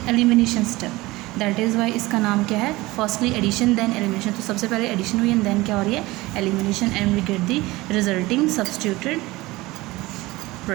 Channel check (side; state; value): left; quieter; 20.2 dB